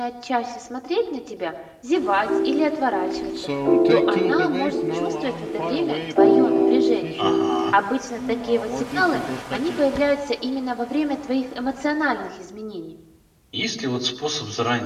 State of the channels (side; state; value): both; identical; correlation 1.00